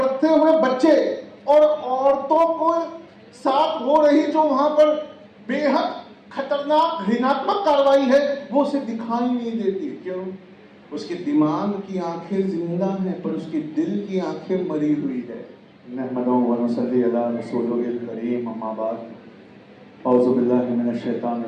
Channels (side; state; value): both; identical; correlation 1.00